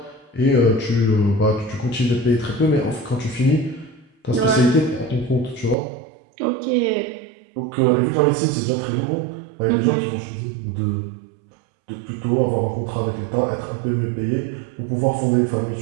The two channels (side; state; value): left; drops out; at 5.8 s